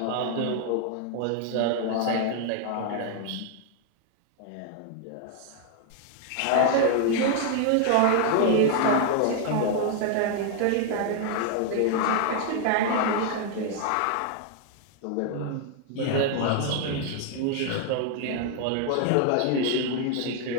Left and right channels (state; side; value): different; both; correlation 0.00